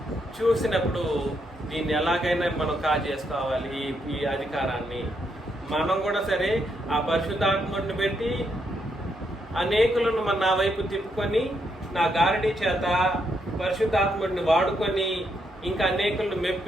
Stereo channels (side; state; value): both; normal; correlation 0.78